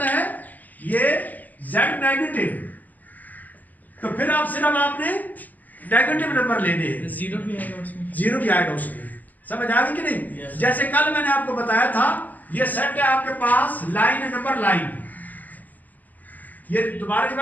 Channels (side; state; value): right; late; 0.082 ms